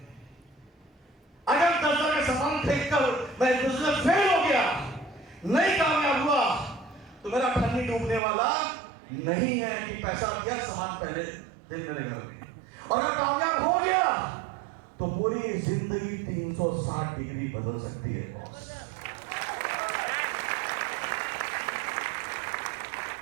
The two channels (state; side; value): drops out; left; at 8.2 s